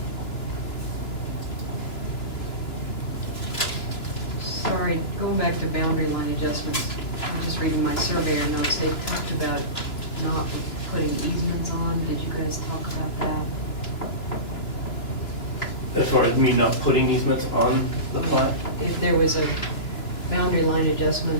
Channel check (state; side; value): late; right; 2.9 ms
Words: Sorry, going back to boundary line adjustments, I'm just reading my surveyor notes, they talked about not putting easements on, did you guys talk about that? As far as me not putting easements on the plat? If there was a boundary line